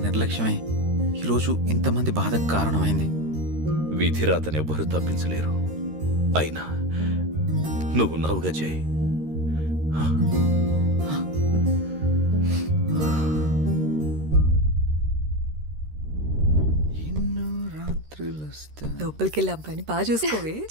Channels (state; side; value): late; left; 13 ms